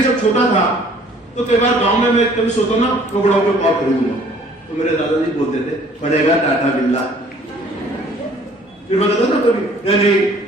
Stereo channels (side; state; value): both; normal; correlation 0.56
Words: जब छोटा था तो कई बार गांव में मैं कभी सोचता ना तो बड़ा होकर कॉल खरीदूंगा, तो मेरे दादाजी बोलते थे पड़ेगा टाटा बिरला। फिर मैं कहता ना कभी नहीं